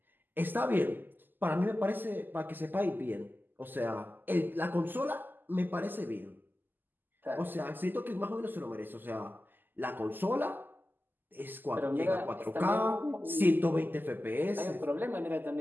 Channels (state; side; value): late; left; 0.090 ms